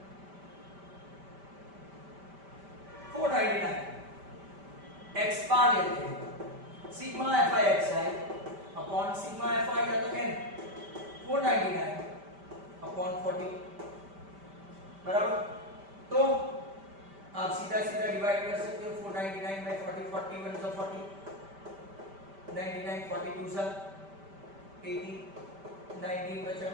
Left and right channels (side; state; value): left; late; 5.1 ms